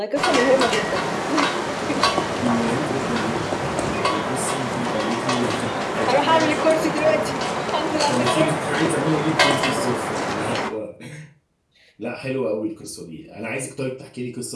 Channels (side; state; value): both; identical; correlation 1.00